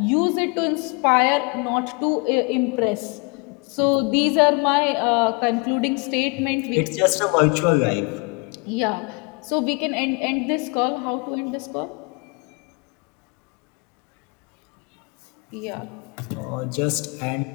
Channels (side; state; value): right; quieter; 30.9 dB